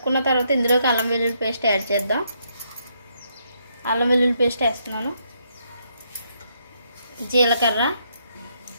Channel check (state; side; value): inverted; both; correlation -0.75